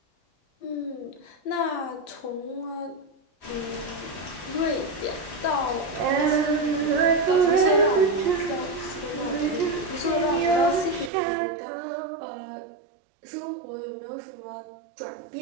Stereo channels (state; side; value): drops out; left; at 11.1 s